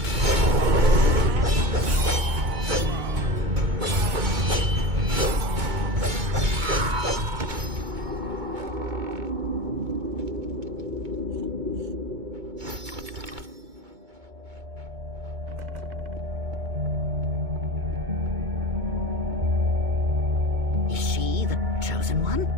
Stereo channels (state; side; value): late; left; 2.2 ms